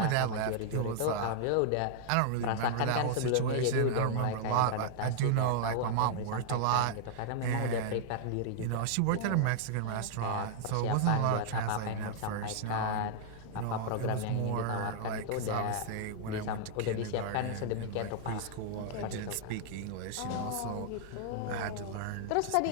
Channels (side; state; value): both; different; correlation -0.01